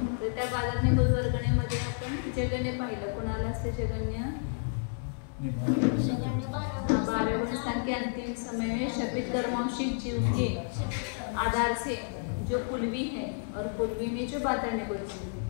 तर त्या बादर निगोद वर्गणेमध्ये आपण जगन्य पाहिलं। कुणाला असते जगन्य? 12 गुण स्थान के अंतिम समय में शपित कर्मांशिक जीव के आधार से जो पुलवी है और पुलवी में जो बादर निगोद जीव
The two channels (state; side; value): silent; right; digital silence